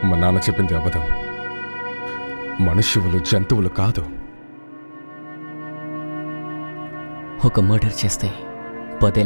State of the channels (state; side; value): inverted; both; correlation -1.00